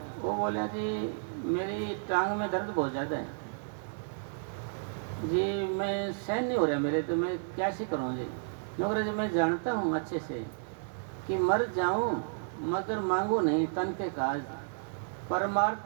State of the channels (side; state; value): left; silent; digital silence